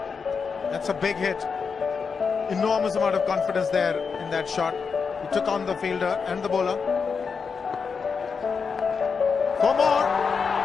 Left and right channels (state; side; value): quieter; right; 5.6 dB